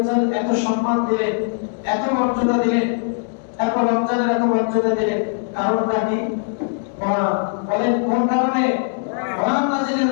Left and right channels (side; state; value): right; silent; digital silence